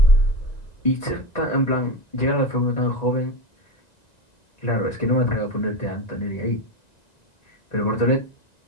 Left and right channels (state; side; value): late; right; 1.9 ms